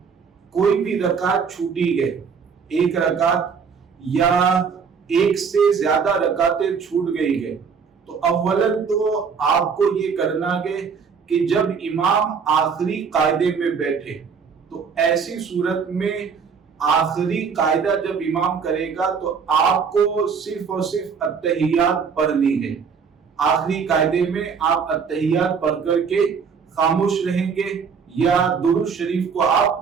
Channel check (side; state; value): left; quieter; 6.1 dB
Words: کوئی بھی رکعت چھوٹی ہے، 1 رکعت یا 1 سے زیادہ رکعتیں چھوٹ گئی ہے، تو اولاً تو آپ کو یہ کرنا ہے کہ جب امام آخری قاعدے میں بیٹھے، تو ایسی صورت میں آخری قاعدہ جب امام کرے گا تو آپ کو صرف اور صرف التحیات پڑھنی ہے۔ آخری قاعدے میں آپ التحیات پڑھ کر کے خاموش رہیں گے یا درود شریف کو